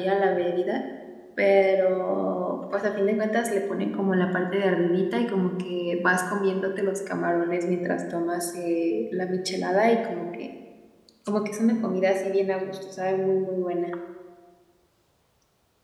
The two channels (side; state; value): both; identical; correlation 1.00